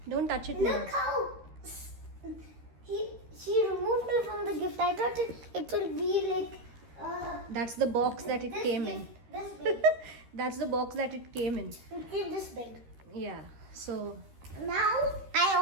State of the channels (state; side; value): late; left; 13 ms